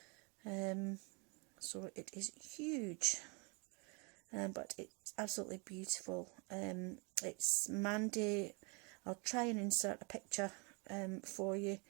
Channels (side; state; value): left; quieter; 32.0 dB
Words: So it is huge, but it's absolutely beautiful. It's Mandy. I'll try and insert a picture for you,